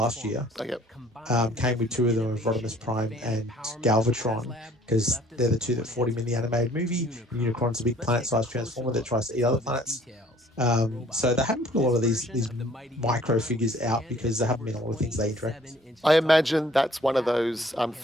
year. Came with 2 of them, of Rodimus Prime and Galvatron, because they're the 2 that fought him in the animated movie. And Unicron's a big planet-sized Transformer that tries to eat other planets. So they haven't put a lot of these micro figures out because there haven't been a lot of things they interact with. I imagine that's one of those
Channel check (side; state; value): both; normal; correlation 0.57